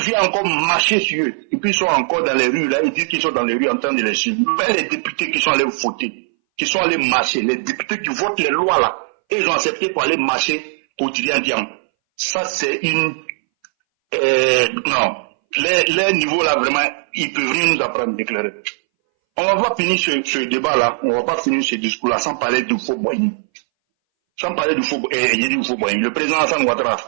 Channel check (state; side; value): silent; left; 62 dB below the other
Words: encore marcher sur eux. Et puis ils sont encore dans les rues, là, ils disent qu'ils sont dans les rues en train de les suivre. Mais les députés qui sont allés voter, qui sont allés marcher, les députés qui votent les lois là, et ils ont accepté pour aller marcher pour Kylian Thiam. Ça c'est une... non. Les niveaux là, vraiment, ils peuvent rien nous apprendre d'éclairer. On va pas finir ce débat-là, on va pas finir ce discours-là sans parler du faux Boigny. Sans parler du faux Boigny. Le président Hassan